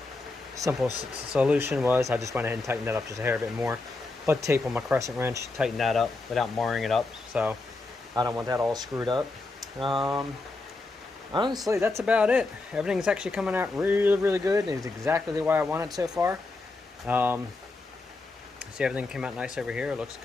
Simple solution was I just went ahead and tightened that up just a hair bit more. Put tape on my crescent wrench, tighten that up without marring it up. So I don't want that all screwed up. Honestly, that's about it. Everything's actually coming out really, really good. It's exactly the way I want it so far. See, everything came out nice over here. It looks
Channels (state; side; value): quieter; right; 3.3 dB